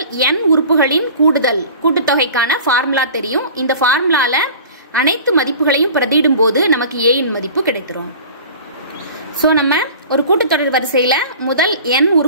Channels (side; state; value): both; inverted; correlation -0.42